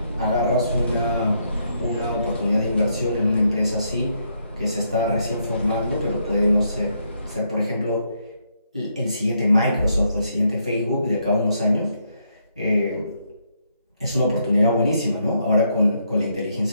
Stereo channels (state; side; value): inverted; both; correlation -0.76